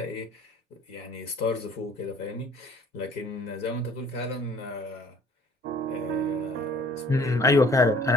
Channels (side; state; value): both; normal; correlation 0.54